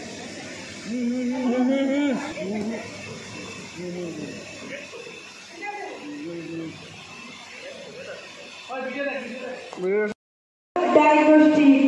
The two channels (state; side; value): identical; both; correlation 1.00